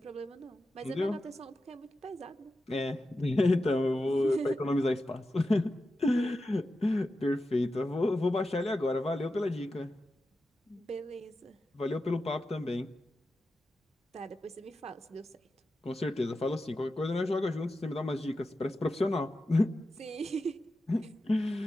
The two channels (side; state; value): both; normal; correlation 0.91